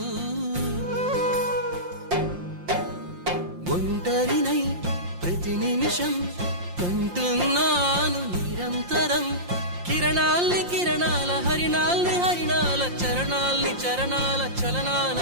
ఒంటరినై ప్రతి నిమిషం కంటున్నాను నిరంతరం. కిరణాల్ని కిరణాల హరిణాల్ని హరిణాల చరణాల్ని చరణాల చలనాల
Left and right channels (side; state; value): left; late; 5.7 ms